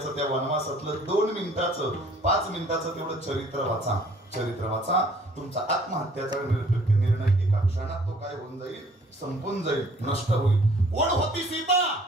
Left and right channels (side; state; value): both; normal; correlation 0.57